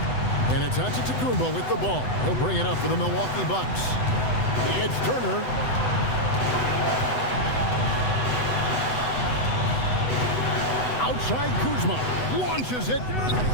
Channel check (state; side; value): late; right; 8.0 ms